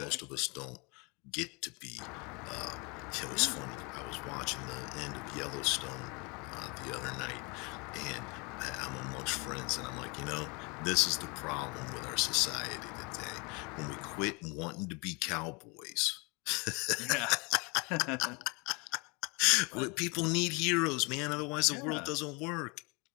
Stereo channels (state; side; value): quieter; right; 29.6 dB